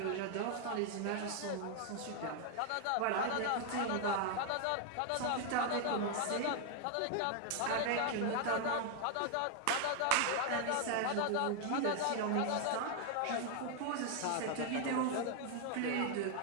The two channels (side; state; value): both; different; correlation 0.00